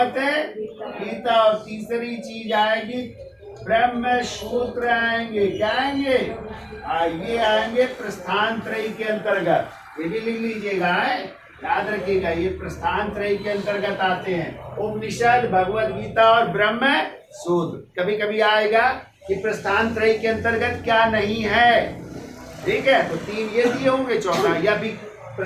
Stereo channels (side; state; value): both; identical; correlation 1.00